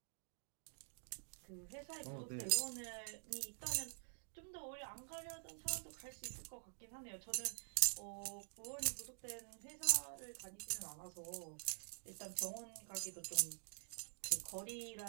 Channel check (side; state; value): left; silent; digital silence